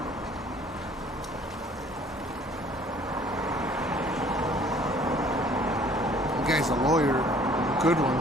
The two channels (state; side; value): normal; both; correlation 0.55